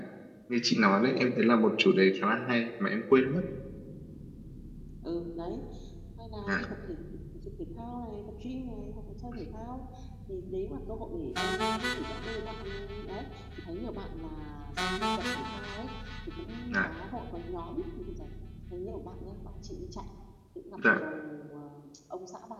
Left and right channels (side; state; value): both; identical; correlation 1.00